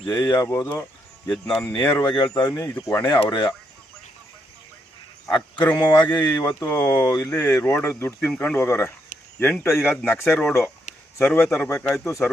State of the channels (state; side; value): normal; both; correlation 0.78